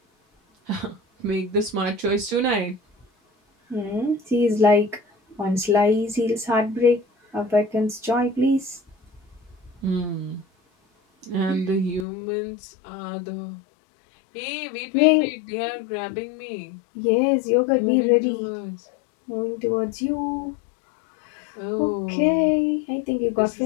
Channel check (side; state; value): right; drops out; at 12.1 s